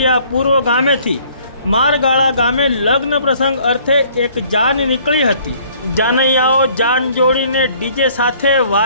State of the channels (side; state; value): both; inverted; correlation -0.58